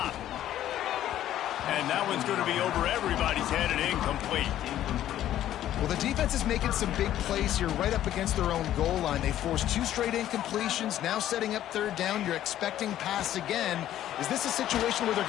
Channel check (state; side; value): quieter; right; 12.3 dB